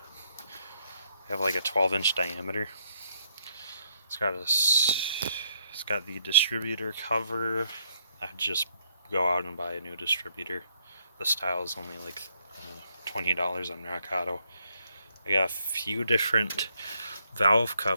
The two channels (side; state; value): both; inverted; correlation -0.73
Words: They have like a 12-inch diameter. It's got the distributor cover. I'd just go out and buy a new distributor. The style is only like $20 on Rock Auto. I got a few different valve